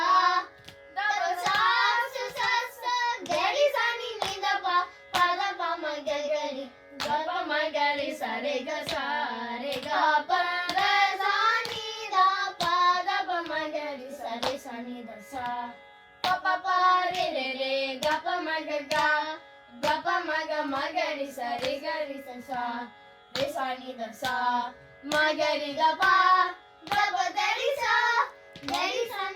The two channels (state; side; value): identical; both; correlation 1.00